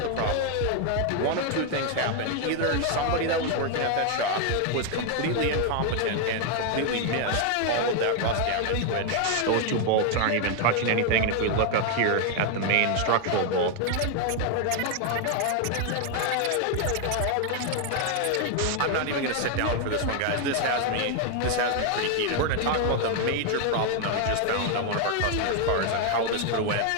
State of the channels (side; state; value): both; different; correlation 0.01